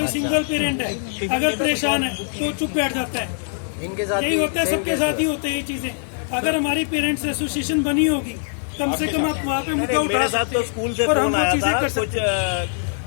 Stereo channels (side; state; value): right; silent; digital silence